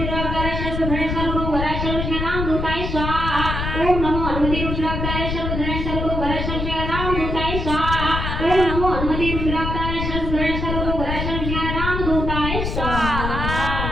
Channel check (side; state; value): left; noise; rumble, 3 dB below the sound